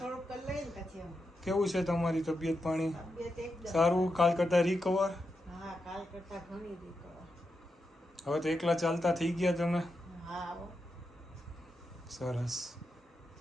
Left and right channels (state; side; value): normal; both; correlation 0.87